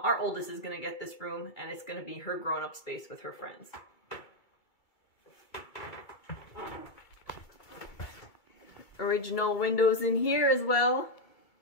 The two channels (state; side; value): late; right; 2.3 ms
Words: oldest is going to get this room and it's going to be her grown-up space with her friends. original windows in here as well,